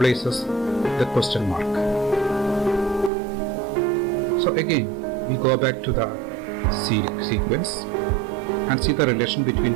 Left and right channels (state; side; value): drops out; left; at 3.1 s